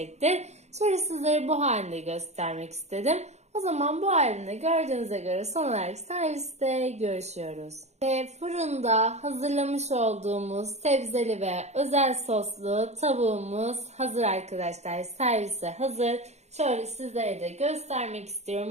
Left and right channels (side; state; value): left; late; 0.32 ms